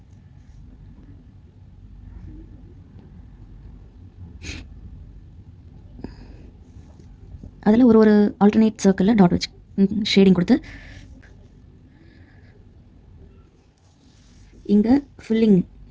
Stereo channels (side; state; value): both; identical; correlation 1.00